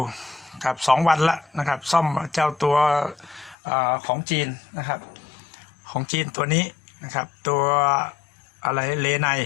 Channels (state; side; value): drops out; right; at 3.6 s